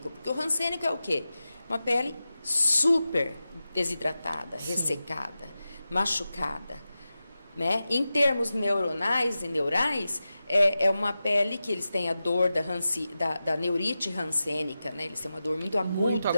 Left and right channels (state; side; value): inverted; both; correlation -0.93